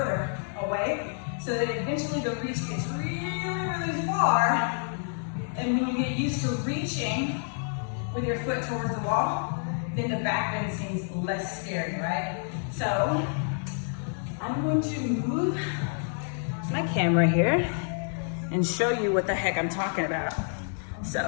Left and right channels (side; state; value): right; silent; 59 dB below the other